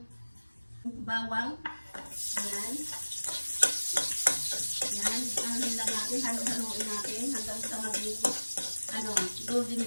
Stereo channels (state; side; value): inverted; both; correlation -1.00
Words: bawang. Ayan. Ayan. Anuhin lang natin. Halo-haloin natin hanggang sa maging golden